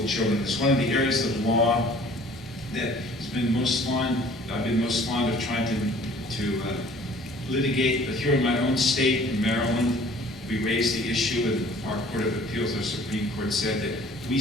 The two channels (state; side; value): normal; both; correlation 0.52